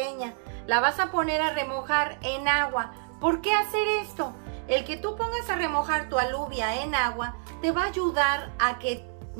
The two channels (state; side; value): silent; left; digital silence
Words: La vas a poner a remojar en agua. ¿Por qué hacer esto? El que tú pongas a remojar tu alubia en agua te va a ayudar a que